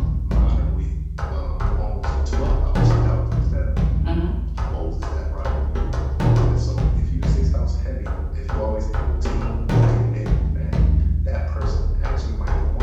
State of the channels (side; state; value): both; identical; correlation 1.00